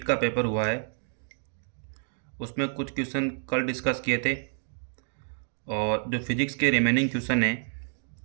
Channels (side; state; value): left; silent; 59 dB below the other